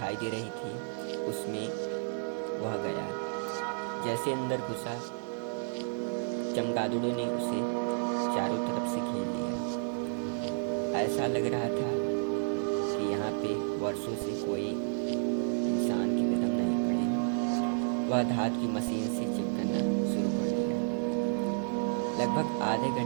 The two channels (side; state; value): left; silent; 57 dB below the other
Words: दे रही थी, उसमें वह गया। जैसे अंदर घुसा, चमगादड़ों ने उसे चारों तरफ से घेर लिया। ऐसा लग रहा था कि यहाँ पे वर्षों से कोई इंसान के कदम नहीं पड़े हैं। वह धातु की मशीन से चेक करना शुरू कर दिया। लगभग आधे